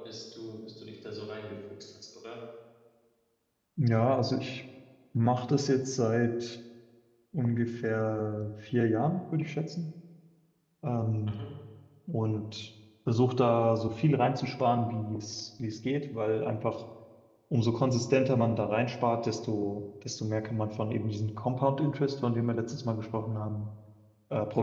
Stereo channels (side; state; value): both; identical; correlation 1.00